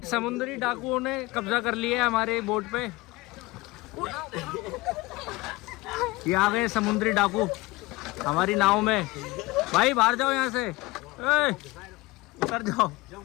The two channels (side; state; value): right; quieter; 21.7 dB